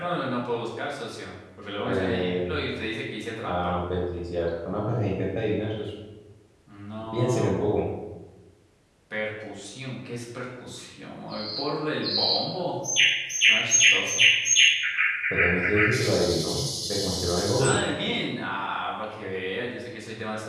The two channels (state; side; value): identical; both; correlation 1.00